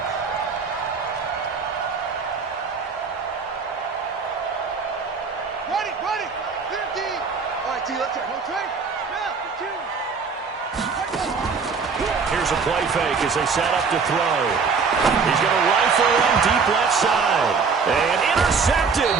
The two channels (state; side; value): quieter; left; 5.2 dB